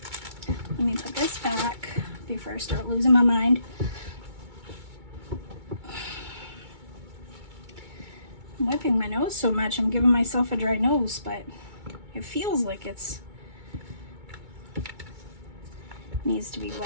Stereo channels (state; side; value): late; left; 2.2 ms